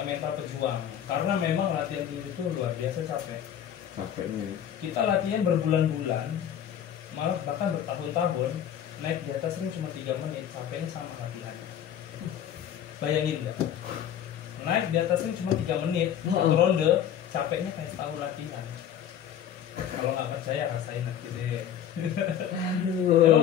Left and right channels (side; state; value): right; quieter; 9.8 dB